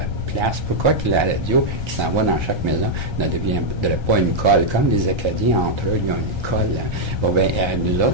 place? Pourquoi que la radio qui s'en va dans chaque maison ne deviendrait pas une colle? Comme les Acadiens, entre eux, ils ont une colle. Hein. Bon, bien, nous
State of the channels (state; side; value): late; left; 1.3 ms